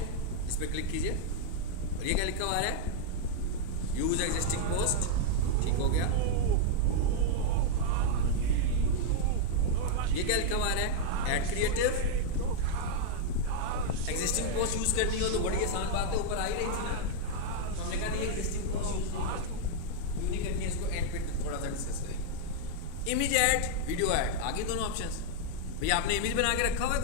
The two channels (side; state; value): both; different; correlation 0.00